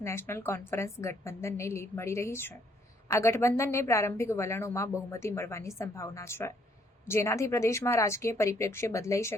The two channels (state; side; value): normal; both; correlation 0.67